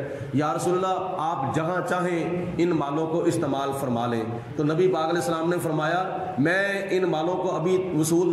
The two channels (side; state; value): both; identical; correlation 1.00